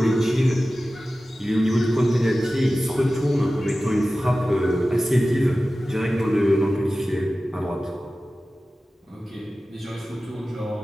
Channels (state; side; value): normal; both; correlation 0.95